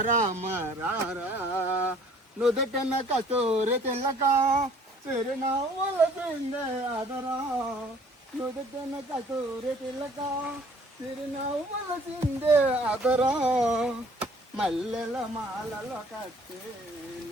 రామారారా నుదుటన కస్తూరి తిలక చిరునవ్వుల పిండే అదరా నుదుటన కస్తూరి తిలక చిరునవ్వుల చిందే అదరా మల్లెల మాలలో కట్టి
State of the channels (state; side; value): normal; both; correlation 0.56